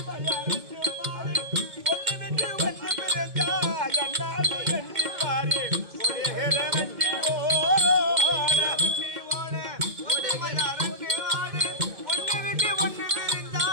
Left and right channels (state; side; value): late; left; 2.0 ms